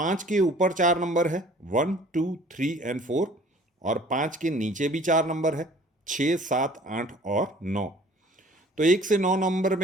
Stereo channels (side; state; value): both; normal; correlation 0.51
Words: के ऊपर 4 नंबर है, 1, 2, 3 और 4, और 5 के नीचे भी 4 नंबर है, 6, 7, 8 और 9। तो 1 से 9 नंबर